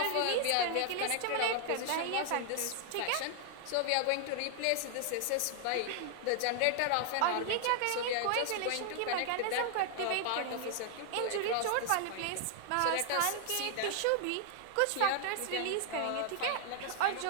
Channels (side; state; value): both; different; correlation 0.00